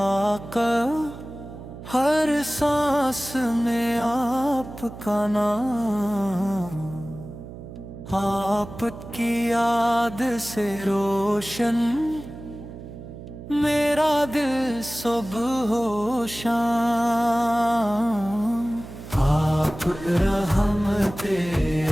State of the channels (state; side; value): noise; right; hum, 13 dB below the sound